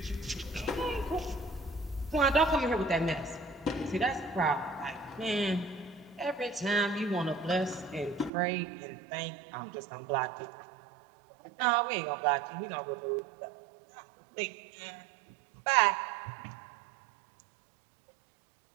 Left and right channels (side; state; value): left; drops out; at 8.3 s